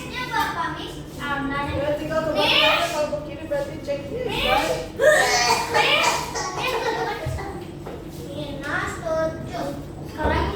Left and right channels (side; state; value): both; identical; correlation 1.00